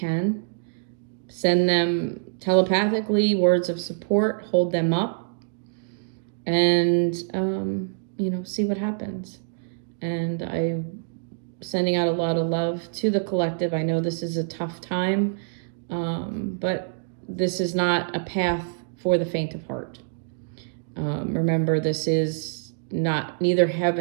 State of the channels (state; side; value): silent; left; digital silence